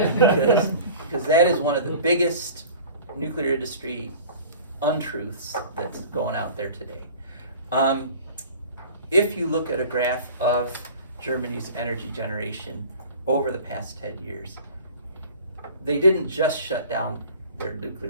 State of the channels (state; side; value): inverted; both; correlation -0.43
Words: because that is one of the biggest nuclear industry untruths that's going out there today. If you look at a graph of Germany's energy generation over the past 10 years, they didn't just shut down their